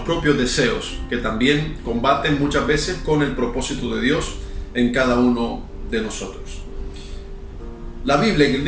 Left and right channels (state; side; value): identical; both; correlation 1.00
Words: propios deseos, que también combaten muchas veces con el propósito de Dios en cada uno de nosotros. La Biblia en el